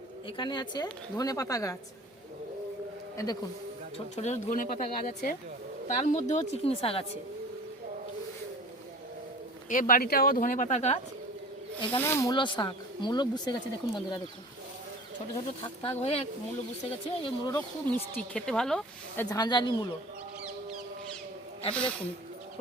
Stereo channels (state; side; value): normal; both; correlation 0.42